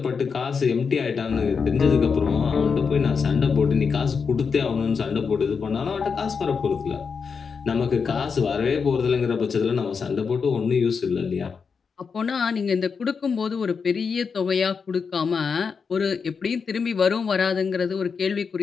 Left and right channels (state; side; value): quieter; right; 5.7 dB